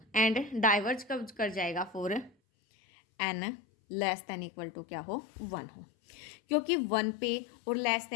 एंड डाइवर्ज कब कर जाएगा, for n less than equal to क्या हो, 1 हो, क्योंकि 1 पे और लेस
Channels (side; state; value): right; drops out; at 2.3 s